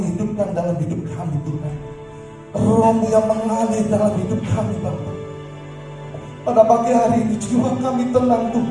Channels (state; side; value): identical; both; correlation 1.00